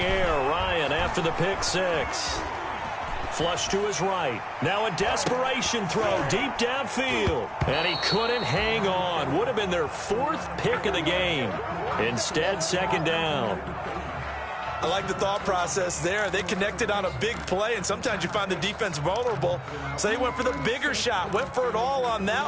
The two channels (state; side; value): identical; both; correlation 1.00